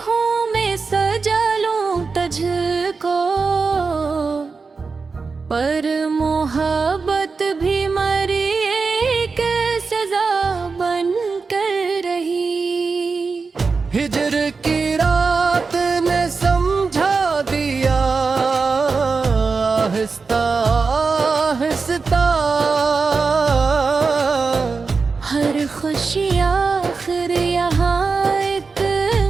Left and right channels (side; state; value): left; quieter; 4.6 dB